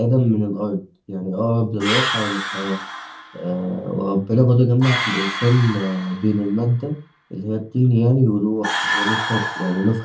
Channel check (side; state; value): both; identical; correlation 1.00